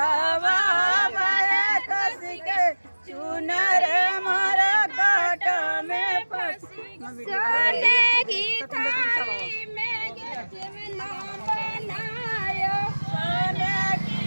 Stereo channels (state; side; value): inverted; both; correlation -1.00